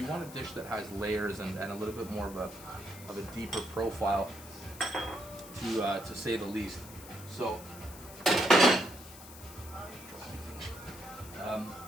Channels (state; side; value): noise; left; hiss, 16 dB below the sound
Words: want a dish that has layers and a little bit more of a deeper profile, to say the least. So,